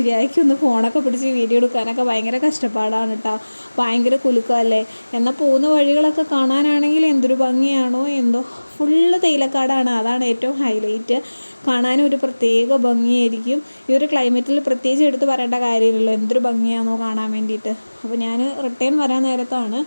ഒന്ന് ഫോണൊക്കെ പിടിച്ച് വീഡിയോ എടുക്കാനൊക്കെ ഭയങ്കര കഷ്ടപ്പാടാണ് കേട്ടോ. ഭയങ്കര കുലുക്കമല്ലേ. എന്നാൽ പോകുന്ന വഴികളൊക്കെ കാണാനാണെങ്കിൽ എന്തൊരു ഭംഗിയാണോ എന്തോ. ഫുള്ള് തേയിലക്കാടാണ്, അതാണ് ഏറ്റവും ഹൈലൈറ്റ്. കാണാനും ഒരു പ്രത്യേക ഭംഗിയായിരിക്കും. ഈ ഒരു ക്ലൈമറ്റിൽ പ്രത്യേകിച്ച് എടുത്ത് പറയേണ്ട കാര്യമില്ലല്ലോ, എന്തൊരു ഭംഗിയാണോ കാണാൻ വേണ്ടിയിട്ട്. അപ്പോൾ ഞാൻ റിട്ടേൺ വരാൻ നേരത്താണ്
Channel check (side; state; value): both; inverted; correlation -1.00